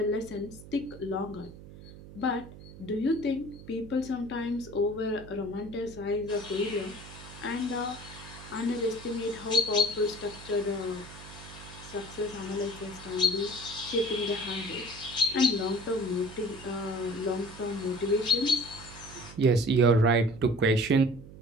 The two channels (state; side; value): noise; right; hum, 16 dB below the sound